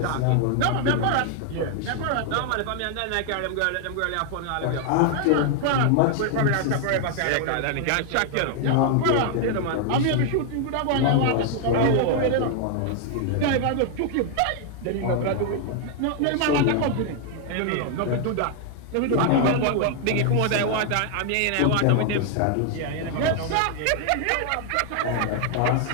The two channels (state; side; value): different; both; correlation 0.00